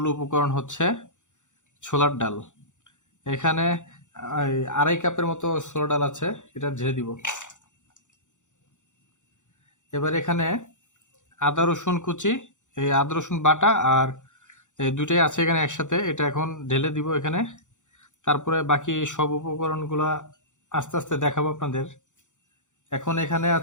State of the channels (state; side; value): late; right; 0.85 ms